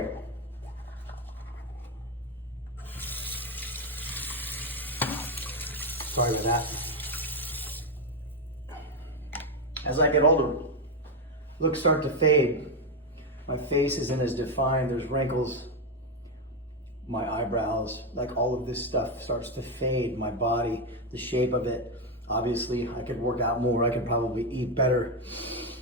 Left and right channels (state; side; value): normal; both; correlation 0.06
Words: Sorry about that. As I get older, looks start to fade. My face isn't as defined. There's wrinkles. My eyebrows, like all of this stuff starts to fade. My body, the shape of it. Obviously, I could work out more. I could probably eat better.